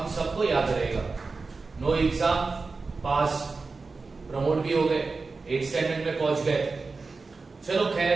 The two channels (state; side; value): quieter; left; 4.1 dB